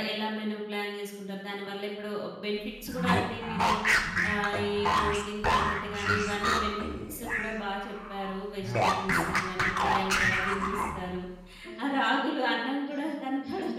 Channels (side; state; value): both; identical; correlation 1.00